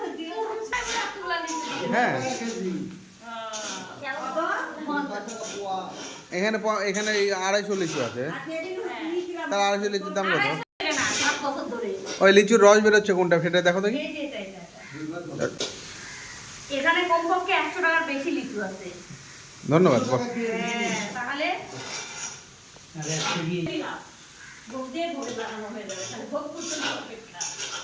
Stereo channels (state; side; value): identical; both; correlation 1.00